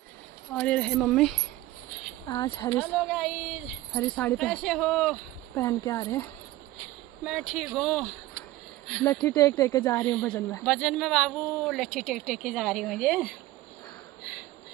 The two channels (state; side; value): quieter; left; 16.8 dB